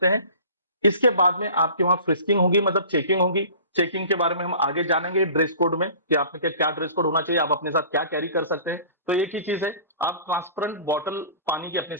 हैं। इसके बाद में आपके वहां फ्रिस्किंग होगी, मतलब चेकिंग होगी। चेकिंग के बारे में हम आगे जानेंगे ड्रेस कोड में, कि आपने क्या ड्रेस कोड होना चाहिए, आप अपने साथ क्या कैरी कर सकते हैं। तो एक ही चीज है, आप ट्रांसपेरेंट बॉटल पानी की अपने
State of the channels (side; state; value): both; inverted; correlation -0.43